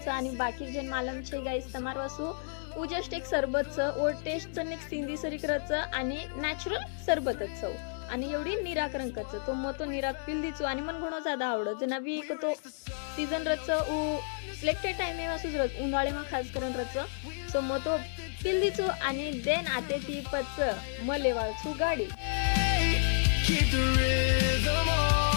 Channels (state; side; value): silent; right; digital silence